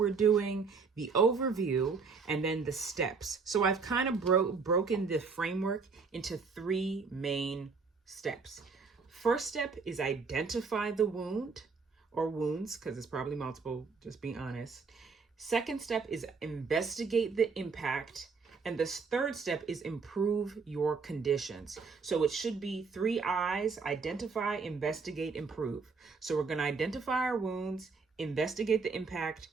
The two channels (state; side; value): quieter; left; 4.9 dB